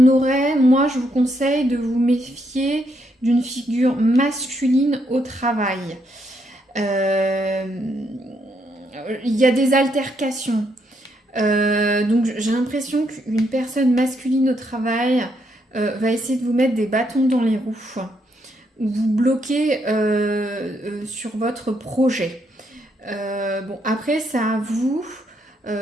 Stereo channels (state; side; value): normal; both; correlation 0.76